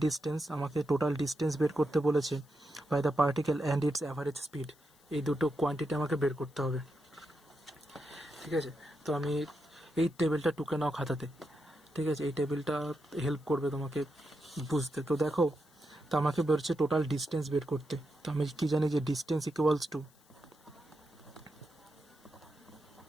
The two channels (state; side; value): noise; left; hiss, 30 dB below the sound